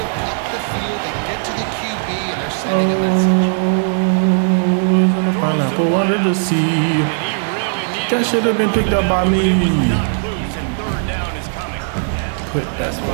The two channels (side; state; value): left; silent; digital silence